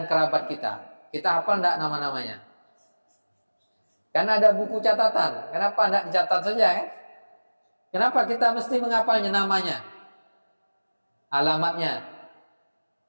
kerabat kita. Kita hafal enggak nama-namanya? Kan ada buku catatan. Kenapa enggak dicatat saja kan? Kenapa kita mesti menghafalnya namanya? Alamatnya.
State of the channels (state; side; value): inverted; both; correlation -1.00